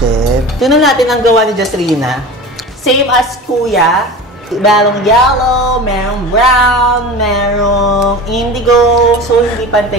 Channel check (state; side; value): normal; both; correlation 0.33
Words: Tingnan natin ang gawa ni Jasrina. Same as Kuya. Merong yellow, merong brown, merong indigo. So, hindi